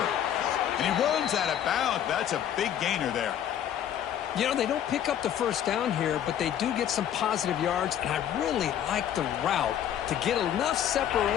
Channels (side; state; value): right; quieter; 10.2 dB